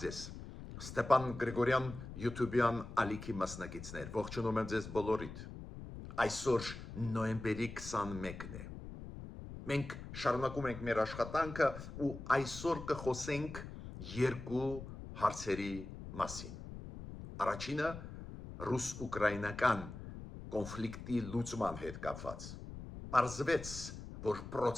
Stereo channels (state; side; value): noise; left; rumble, 11 dB below the sound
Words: ձեզ, Ստեփան Գրիգորյան YouTube-յան ալիքի մասնակիցներ, ողջունում եմ ձեզ բոլորիդ։ Այսօր նոյեմբերի 21-ն է։ Մենք շարունակում ենք մեր աշխատանքը ու այսօր կխոսենք երկու հարցերի մասին։ Առաջինը ռուս-ուկրաինական կոնֆլիկտի լուծման հետ կապված։ Պարզվեց, որ